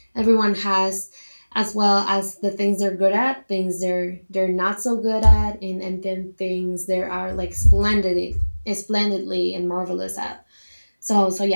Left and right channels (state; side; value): inverted; both; correlation -1.00